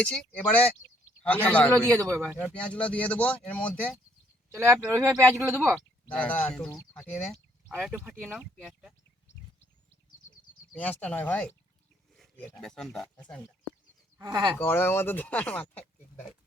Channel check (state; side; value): normal; both; correlation 0.67